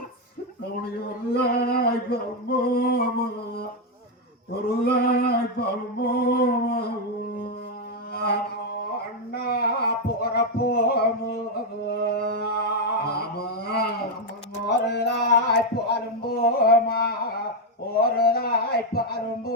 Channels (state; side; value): normal; both; correlation 0.03